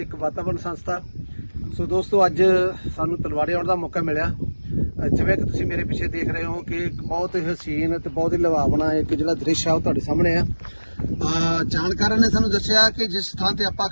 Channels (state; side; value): inverted; both; correlation -1.00